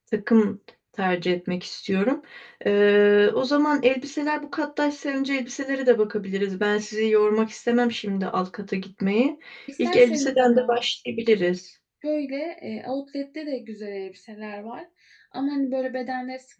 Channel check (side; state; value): both; identical; correlation 1.00